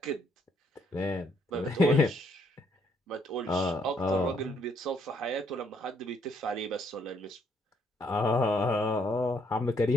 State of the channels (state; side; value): normal; both; correlation 0.69